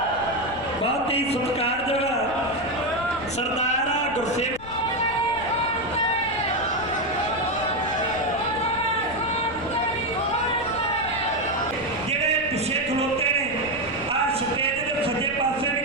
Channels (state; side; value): noise; left; rumble, 16 dB below the sound